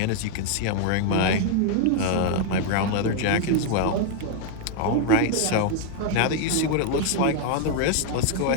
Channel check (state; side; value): different; both; correlation 0.00